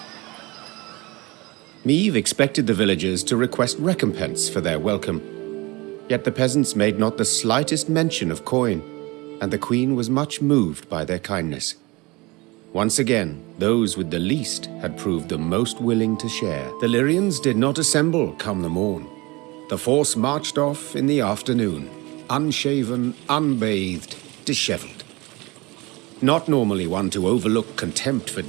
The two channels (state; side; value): quieter; left; 23.5 dB